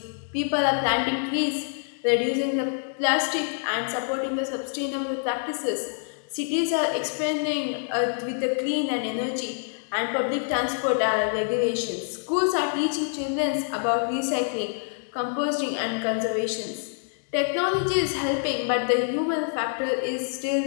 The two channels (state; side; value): silent; right; digital silence